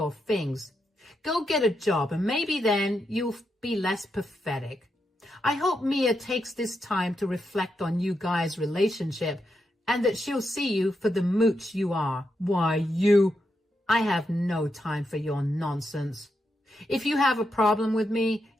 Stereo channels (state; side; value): normal; both; correlation 0.84